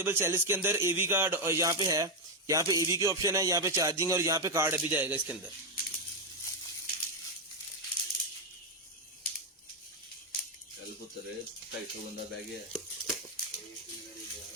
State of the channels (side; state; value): both; normal; correlation 0.04